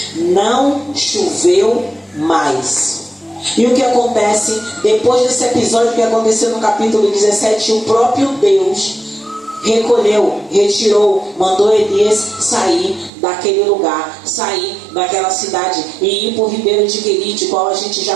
Não choveu mais. E o que acontece depois desse episódio que aconteceu no capítulo 17? O próprio Deus retirou, mandou Elias sair daquele lugar, sair daquela cidade e ir para o ribeiro de Querite, qual a gente já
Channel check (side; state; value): left; drops out; at 13.1 s